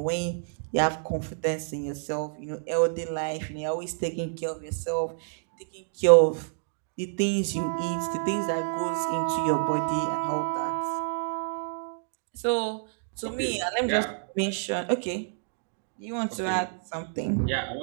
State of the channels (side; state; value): left; silent; digital silence